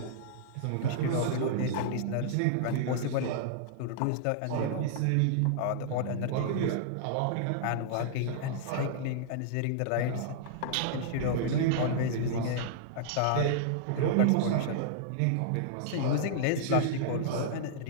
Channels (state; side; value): different; both; correlation -0.02